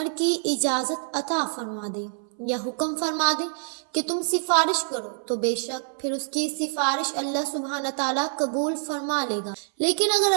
کی اجازت عطا فرما دے یا حکم فرما دے کہ تم سفارش کرو، تو بے شک پھر اس کی سفارش اللہ سبحانہ تعالیٰ قبول فرما لے گا۔ لیکن اگر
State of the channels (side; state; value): left; silent; 61 dB below the other